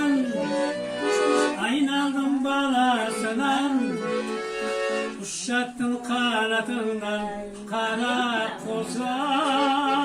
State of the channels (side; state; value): both; identical; correlation 1.00